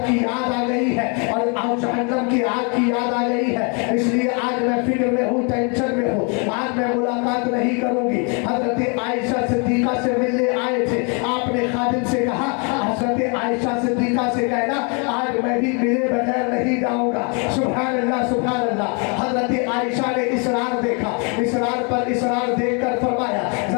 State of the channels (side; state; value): right; quieter; 35.2 dB